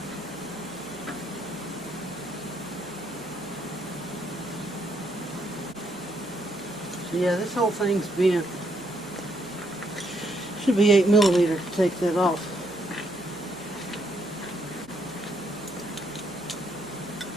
So yeah, this whole thing's bent. Should be 8mm to take that off.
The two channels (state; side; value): noise; right; hum, 22 dB below the sound